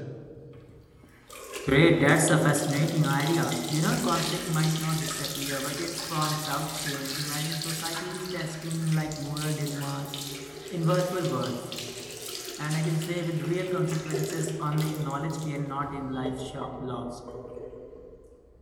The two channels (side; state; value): both; identical; correlation 1.00